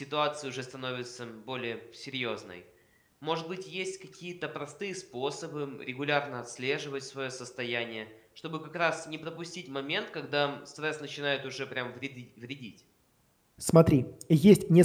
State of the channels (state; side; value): identical; both; correlation 1.00